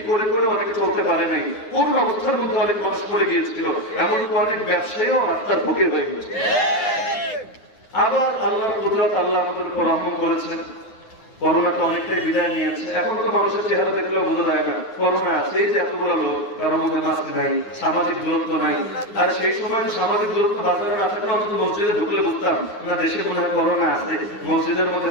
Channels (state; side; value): late; right; 9.6 ms